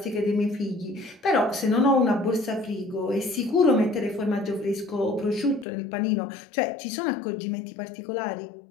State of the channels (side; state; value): right; drops out; at 5.7 s